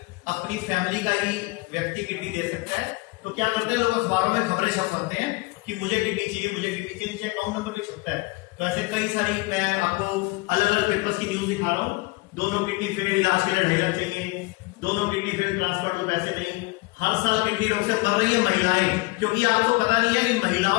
अपनी फैमिली का ही व्यक्ति किडनी दे सकता है। तो क्या करते हैं लोग, अखबारों में खबरें छपवाते हैं कि मुझे किडनी चाहिए, मुझे किडनी चाहिए, नीचे अकाउंट नंबर भी छपता है। तो ऐसे कई सारी, मैं आपको अलग अलग पेपर्स की न्यूज दिखा रहा हूँ। दोनों किडनी फेल, इलाज के लिए 2.5 लाख चाहिए, दोनों किडनी फेल, ट्रांसप्लांट को पैसे नहीं। हर साल किडनी रोग से मर रही है महिलाएं, क्योंकि आपको पता नहीं है कि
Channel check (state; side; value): quieter; right; 24.3 dB